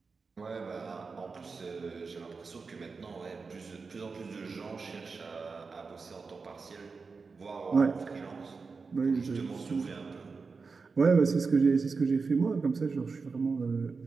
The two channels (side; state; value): left; quieter; 4.6 dB